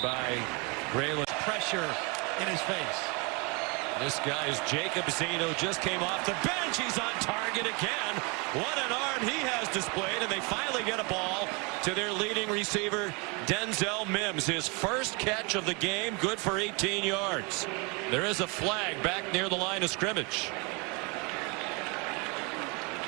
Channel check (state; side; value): quieter; left; 30.4 dB